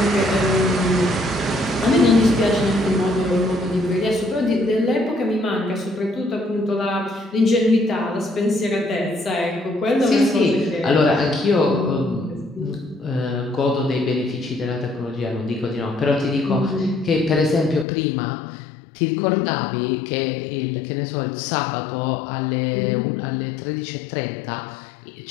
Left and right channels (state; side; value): drops out; right; at 17.9 s